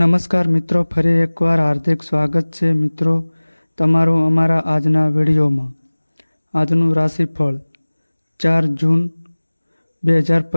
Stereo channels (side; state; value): both; inverted; correlation -1.00